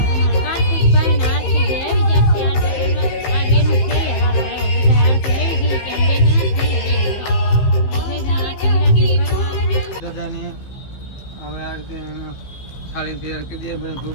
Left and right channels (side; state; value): right; late; 15 ms